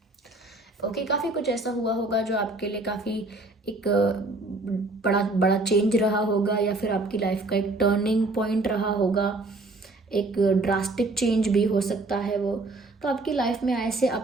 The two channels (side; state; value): left; quieter; 3.1 dB